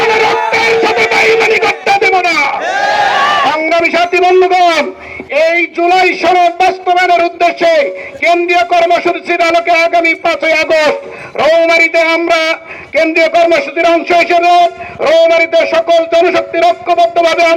রক্তের সাথে বেইমানি করতে দেব না। সংগ্রামী সাথী বন্ধুগণ, এই জুলাই সনদ বাস্তবায়নের উদ্দেশ্যে কেন্দ্রীয় কর্মসূচির আলোকে আগামী 5ই আগস্ট রৌমারীতে আমরা কেন্দ্রীয় কর্মসূচির অংশ হিসেবে রৌমারীতে সকল জনশক্তির ঐক্যবদ্ধভাবে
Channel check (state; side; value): identical; both; correlation 1.00